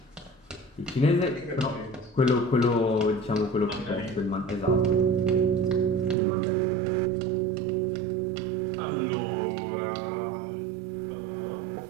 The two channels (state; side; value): drops out; left; at 6.2 s